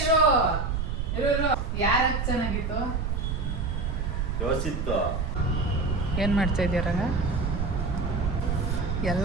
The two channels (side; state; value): right; noise; rumble, 1 dB below the sound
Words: ಯಾರ ಚೆನ್ನಾಗಿತ್ತು? ಯೋಚಿತ್ತು. ಏನ್ ಮಾಡ್ತಾ ಇದೀಯ ರಂಗ? ಎಲ್ಲ